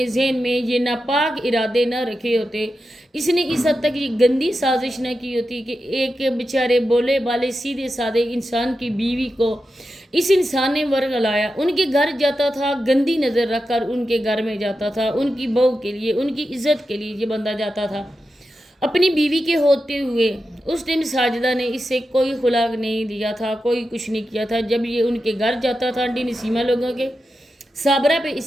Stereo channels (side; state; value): both; normal; correlation 0.90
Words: जहन में ये नापाक इरादे न रखे होते, इसने इस हद तक ये गंदी साजिश न की होती कि एक बेचारे बोले बाले सीधे साधे इंसान की बीवी को इस इंसान ने वर्ग लाया, उनके घर जाता था, गंदी नज़र रख कर उनके घर में जाता था, उनकी बहू के लिए, उनकी इज्जत के लिए ये बंदा जाता था अपनी बीवी के होते हुए। उस टाइम साजिदा ने इससे कोई खुलाक नहीं दिया था, कोई कुछ नहीं किया था। जब ये उनके घर जाता था, आंटी नसीमा लोगों के, साबरा पे